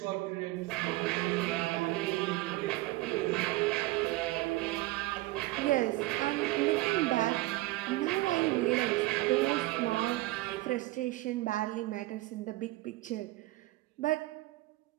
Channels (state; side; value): quieter; left; 19.0 dB